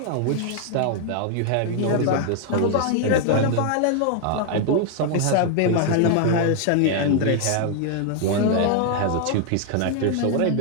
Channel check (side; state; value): both; different; correlation 0.00